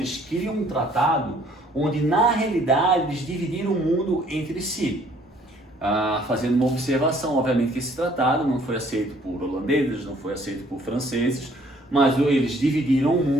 criam um tratado onde, na realidade, eles dividiram o mundo entre si. Fazendo uma observação, obviamente que esse tratado não foi aceito por holandeses, não foi aceito por franceses, mas eles dividiram o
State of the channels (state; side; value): normal; both; correlation 0.60